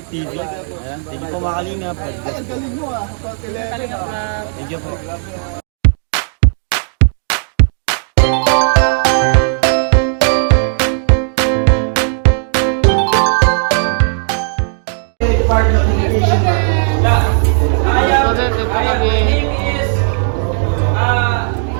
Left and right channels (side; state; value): left; silent; 62 dB below the other